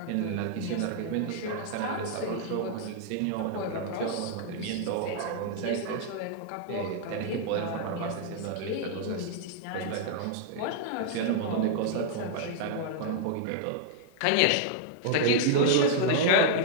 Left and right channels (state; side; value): different; both; correlation -0.01